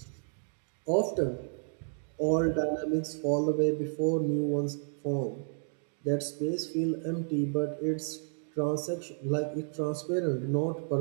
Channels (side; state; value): left; silent; 57 dB below the other